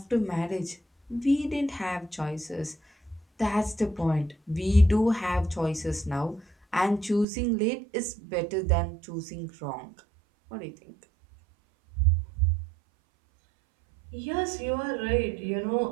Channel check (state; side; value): drops out; left; at 7.2 s